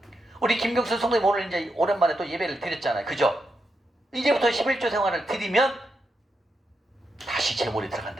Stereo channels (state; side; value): normal; both; correlation 0.84